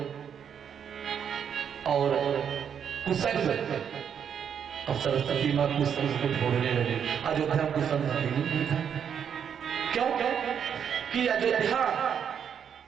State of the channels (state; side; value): quieter; left; 8.0 dB